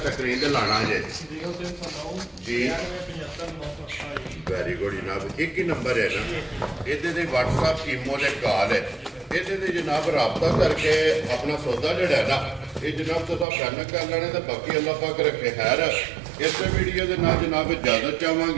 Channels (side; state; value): left; drops out; at 13.5 s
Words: ਸਕਰੀਨ ਤੇ ਲਾਣਾ ਜੇ 0309 ਜੀ 95 ਵੈਰੀ ਗੁੱਡ ਜਨਾਬ ਇੱਕ ਹੀ ਨੰਬਰ ਹੈ ਨਾ ਇਹਦੇ ਤੇ WhatsApp ਈਮੋ ਦੇ ਕਾਲ ਹੈ ਇਹਦੇ ਤੇ ਜਨਾਬ ਰਾਬਤਾ ਕਰਕੇ ਆਪਣਾ ਸੌਦਾ ਜਿਹੜਾ ਹੈ ਨਾ ਇਹ ਜਨਾਬ ਤੁਸੀਂ ਫੈਨ ਕਰ ਲੈਣੇ ਤੇ ਬਾਕੀ ਅੱਲਾਹ ਪਾਕ ਰੱਖੇ ਖੈਰ ਇਸੇ ਵੀਡੀਓ ਦੇ ਨਾਲ ਜਨਾਬ ਇਜਾਜ਼ਤ